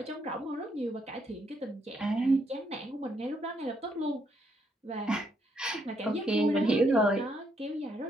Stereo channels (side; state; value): both; normal; correlation 0.74